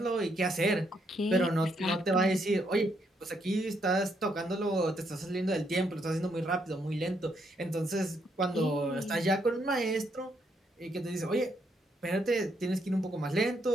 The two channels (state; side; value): normal; both; correlation 0.75